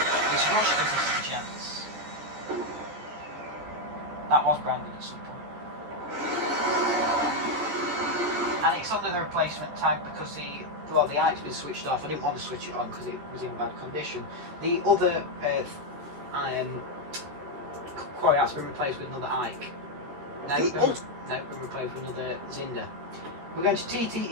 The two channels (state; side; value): late; left; 14 ms